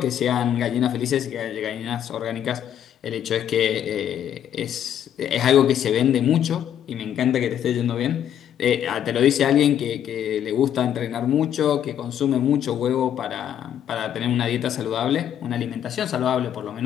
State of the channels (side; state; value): right; quieter; 10.0 dB